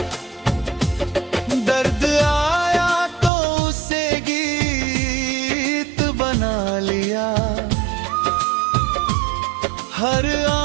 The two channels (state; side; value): drops out; left; at 3.3 s